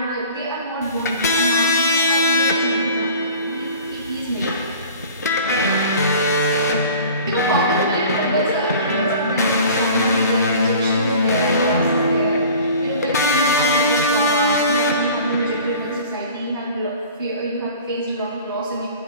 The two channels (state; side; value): inverted; both; correlation -0.44